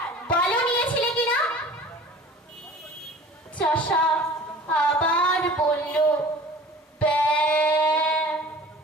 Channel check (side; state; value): both; normal; correlation 0.44